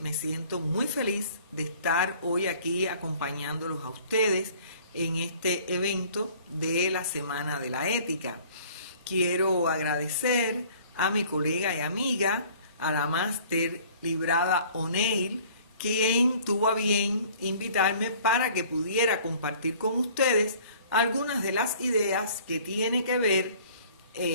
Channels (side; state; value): both; inverted; correlation -0.52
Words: siento muy feliz de estar hoy aquí acompañándolos a ustedes en este evento de la Semana de la Ética. Quiero agradecer a mi colega y amiga, a la máster Librada O'Neill, quien tuvo a bien invitarme para que pudiera compartir con ustedes algunas de las ideas que tienen que ver,